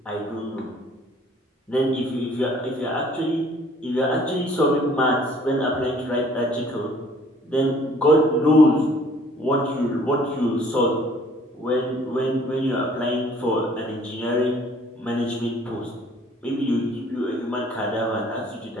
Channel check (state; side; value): normal; both; correlation 0.57